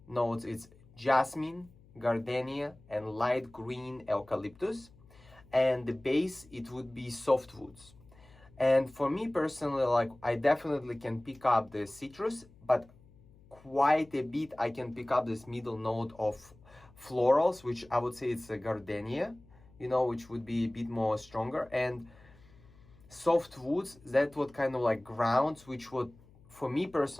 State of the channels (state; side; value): noise; left; hum, 25 dB below the sound